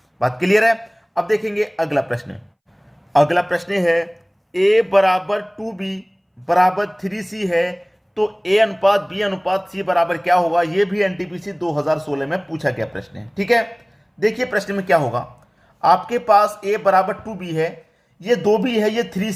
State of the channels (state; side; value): identical; both; correlation 1.00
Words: बात क्लियर है? अब देखेंगे अगला प्रश्न। अगला प्रश्न है, ए बराबर 2b बराबर 3c है, तो ए अनुपात बी अनुपात सी बराबर क्या होगा? यह भी एनटीपीसी 2016 में पूछा गया प्रश्न है। ठीक है, देखिए प्रश्न में क्या होगा। आपके पास ए बराबर 2b है, ये 2b है, ये